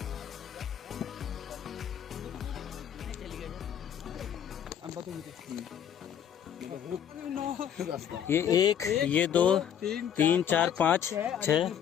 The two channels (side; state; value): right; quieter; 9.1 dB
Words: ये 1, ये 2, 3, 4, 5,